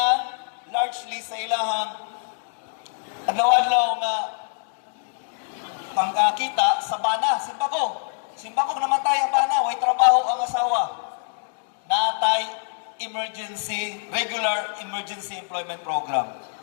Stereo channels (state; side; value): silent; right; digital silence